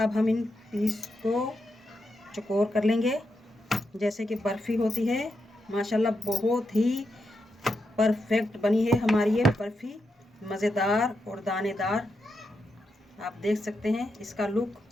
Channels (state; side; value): normal; both; correlation 0.85